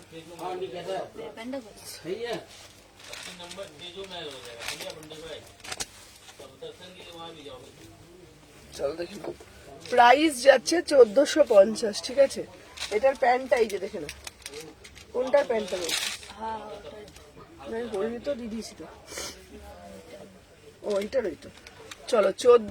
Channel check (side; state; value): both; identical; correlation 1.00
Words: तेजू महल नहीं कहता सही है, नंबर तेजू महल हो जाएगा, इंडिया बंडे को तब दर्शन के लिए वहाँ भी जाओगे। চলো দেখি প্রাইস যাচ্ছে 1450, ঠিক আছে? এটার প্যান্টটা এই যে দেখে না, কোনটার প্যান্টটা বলছি? আমি বলিনি তো, দিদিছি তো। ও এইটার ওই তো। চলো